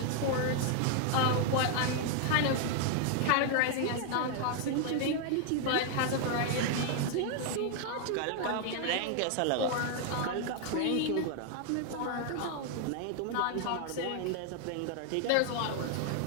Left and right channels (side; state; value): both; different; correlation 0.00